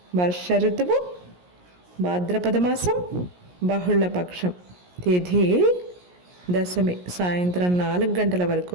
వర్ష ఋతువు, భాద్రపద మాసం, బహుళపక్షం. తిథి దశమి, సాయంత్రం 4 గంటల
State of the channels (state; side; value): late; left; 17 ms